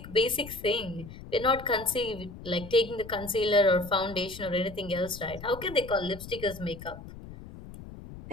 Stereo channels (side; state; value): left; noise; rumble, 14 dB below the sound